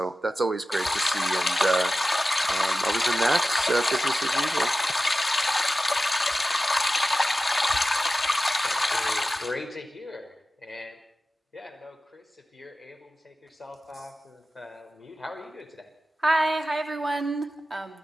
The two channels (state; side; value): normal; both; correlation 0.94